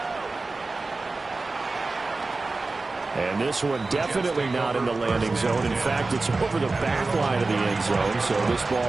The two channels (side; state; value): left; quieter; 3.5 dB